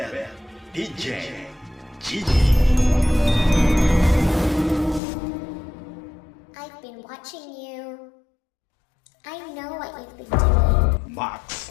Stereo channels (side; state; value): right; drops out; at 5.0 s